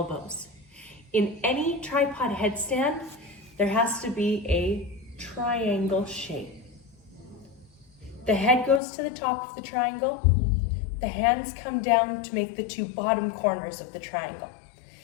In any tripod headstand, there has to be a triangle shape. The head goes to the top of the triangle. The hands come down to make the two bottom corners of the triangle.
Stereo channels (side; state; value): right; drops out; at 8.8 s